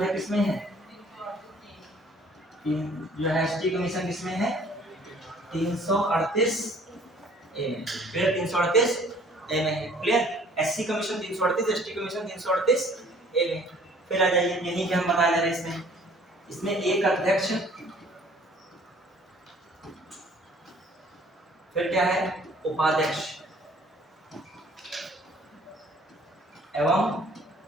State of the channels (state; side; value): normal; both; correlation 0.55